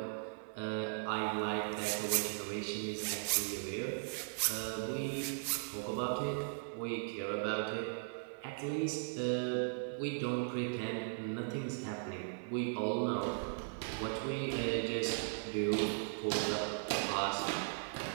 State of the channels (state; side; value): silent; left; 52 dB below the other